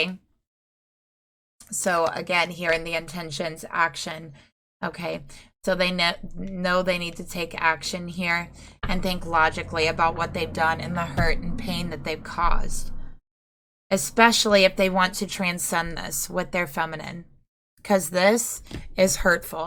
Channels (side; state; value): both; identical; correlation 1.00